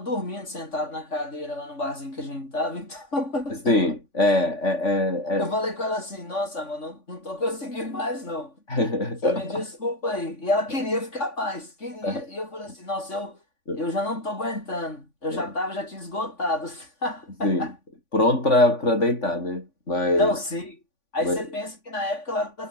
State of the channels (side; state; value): right; late; 3.5 ms